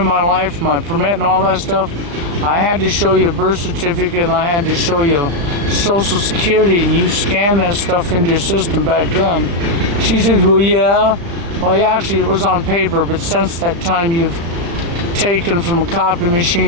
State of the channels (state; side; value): late; left; 35 ms